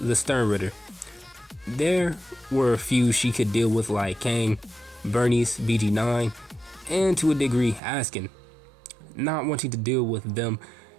Sternritter. There were a few she could deal with, like Kang, Bernice, BG9, and to a degree Askin. Not wanting to deal with them,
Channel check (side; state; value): left; drops out; at 7.8 s